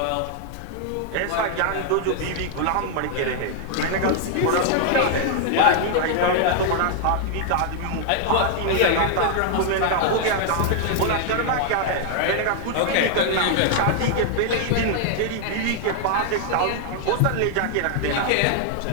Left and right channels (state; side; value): different; both; correlation 0.00